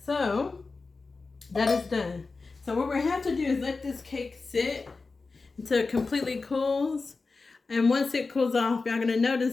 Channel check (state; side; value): quieter; right; 4.0 dB